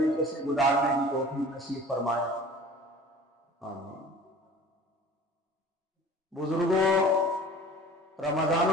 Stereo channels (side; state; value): both; normal; correlation 0.44